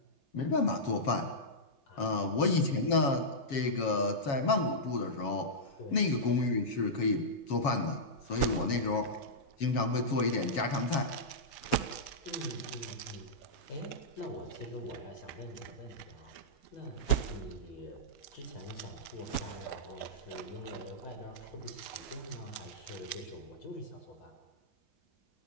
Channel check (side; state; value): right; late; 7.3 ms